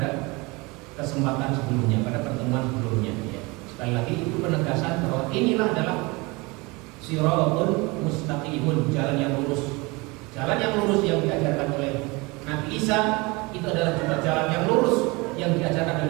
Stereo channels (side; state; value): left; quieter; 25.4 dB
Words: kesempatan sebelumnya, pada pertemuan sebelumnya ya. Sekali lagi itu penegasan bahwa inilah adalah shiratun mustaqimun, jalan yang lurus. Jalan yang lurus yang diajarkan oleh Nabi Isa itu adalah juga jalan yang lurus yang diajarkan